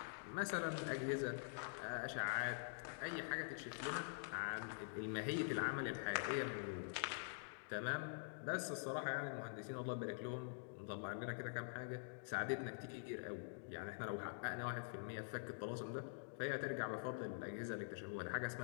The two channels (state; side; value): silent; right; digital silence